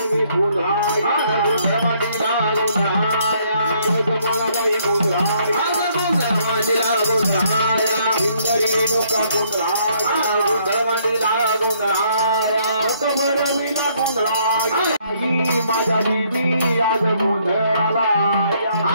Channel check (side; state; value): both; inverted; correlation -0.68